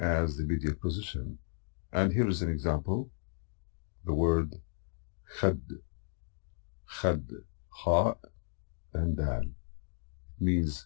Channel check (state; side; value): silent; right; digital silence